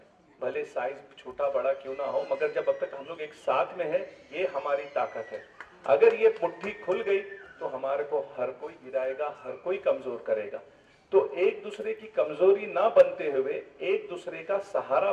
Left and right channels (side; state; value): both; identical; correlation 1.00